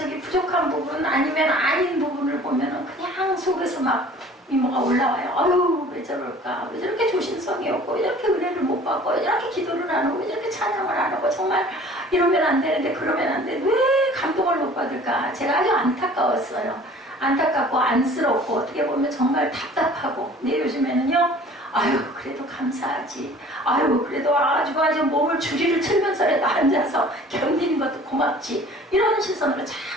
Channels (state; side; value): normal; both; correlation 0.48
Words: 부족한 부분 아니면 아닌 부분을 보면은 그냥 속에서 막 미모가 올라와요. 아유, 왜 저럴까? 왜 저렇게 조심성이 없고, 왜 저렇게 은혜를 못 받고, 왜 저렇게 기도를 안 하고, 왜 저렇게 찬양을 안 하고, 정말 이러면 안 되는데, 그러면 안 돼. 왜 감동을 못 받을까? 제가 아주 안타까웠어요. 안타깝고, 안쓰럽고, 어떻게 보면 정말 답답하고. 근데 요즘에는요, 아유, 그래도 감사하지. 아유, 그래도 아주 몸을 주리를 틀면서라도 앉아서 견디는 것도 고맙지. 이런 시선으로